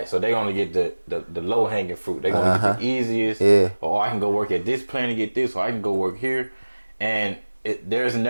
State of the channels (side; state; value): both; inverted; correlation -1.00